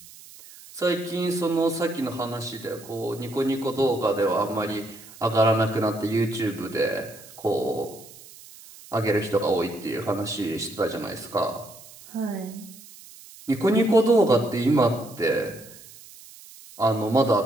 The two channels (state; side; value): noise; right; hiss, 20 dB below the sound